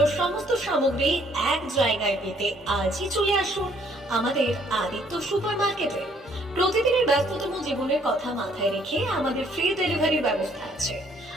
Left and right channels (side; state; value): both; normal; correlation 0.64